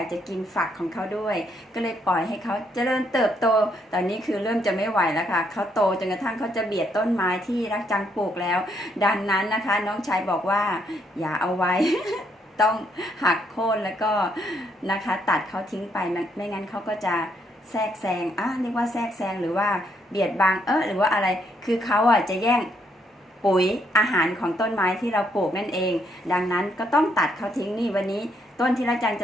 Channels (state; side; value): normal; both; correlation 0.73